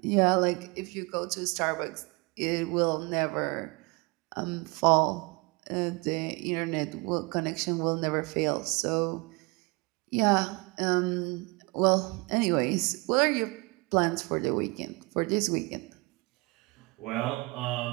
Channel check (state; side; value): quieter; left; 27.0 dB